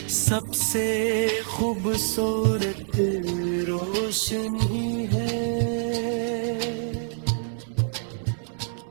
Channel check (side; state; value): left; silent; digital silence